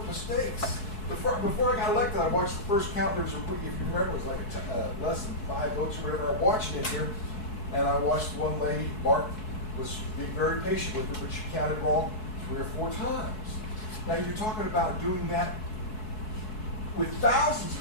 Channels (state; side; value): late; right; 4.6 ms